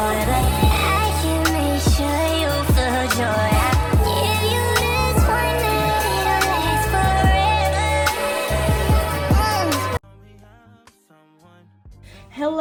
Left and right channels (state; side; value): identical; both; correlation 1.00